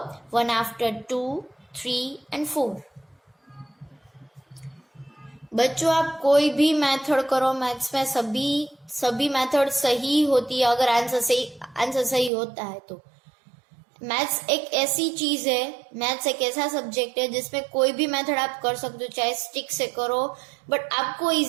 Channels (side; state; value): left; drops out; at 12.3 s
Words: 1 after 2, 3 and 4। बच्चों आप कोई भी मेथड करो, मैथ्स में सभी मेथड सही होती है अगर आंसर सही होता है तो। मैथ्स एक ऐसी चीज है, मैथ्स एक ऐसा सब्जेक्ट है जिसमें कोई भी मेथड आप कर सकते हो, चाहे स्टिक से करो, बट आपको